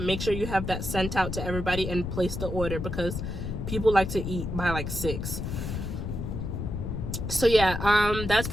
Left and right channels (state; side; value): noise; left; rumble, 4 dB below the sound